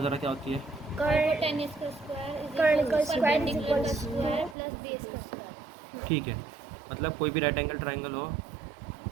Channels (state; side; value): drops out; left; at 4.5 s